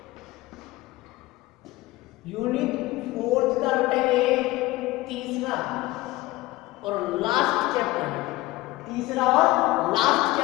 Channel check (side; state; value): right; quieter; 19.2 dB